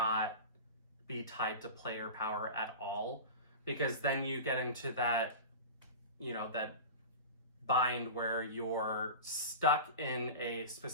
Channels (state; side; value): inverted; both; correlation -0.30